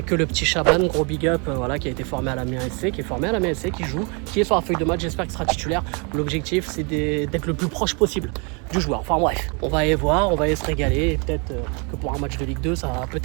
que le petit Chaban, gros big up, voilà, qui a été formé à la MSC, qui est formé à la MSC, qui joue, qui est sur la feuille de match, j'espère qu'il sera titulaire. L'objectif c'est d'être le plus proche possible du joueur. Enfin bref, on va aller voir, on va aller se régaler. Et peut-être que pour un match de Ligue 2, ça va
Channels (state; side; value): quieter; left; 33.2 dB